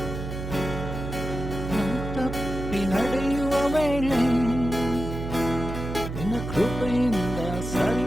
ನಡೆಯುವ ವೇಳೆ ನಿನ್ನ ಕೃಪೆಯಿಂದ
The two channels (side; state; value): right; noise; hum, 6 dB below the sound